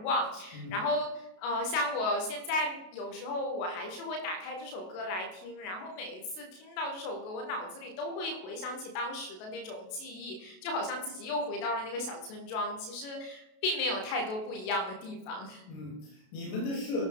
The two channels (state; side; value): late; right; 32 ms